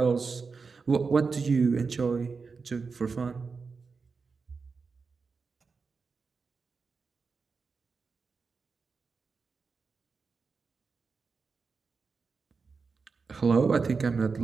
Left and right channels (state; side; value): quieter; left; 4.8 dB